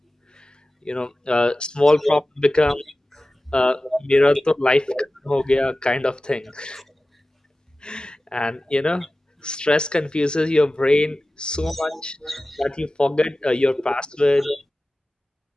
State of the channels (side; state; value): both; normal; correlation 0.96